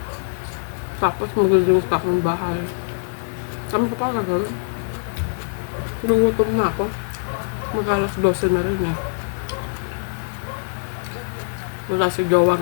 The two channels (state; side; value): silent; right; 64 dB below the other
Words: Tapos magiging akong bahay. Saan ko pa gagawin? Lugutom na ako. Mag-alas 12 na rin Wala si Gawa